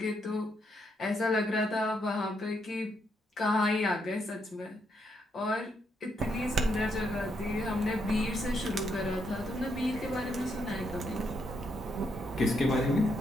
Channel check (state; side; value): normal; both; correlation 0.77